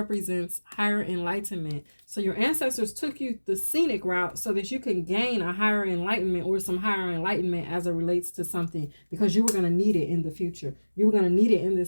higher enlightenment. So your ancestors took you the scenic route so that you can gain a higher enlightenment or some higher enlightenment as it relates to something, because you were going to need it in the future. You were going to need it in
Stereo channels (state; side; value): inverted; both; correlation -1.00